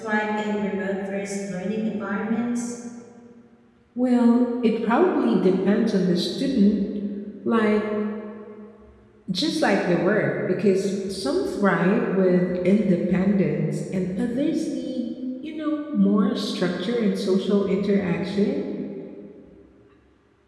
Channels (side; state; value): both; identical; correlation 1.00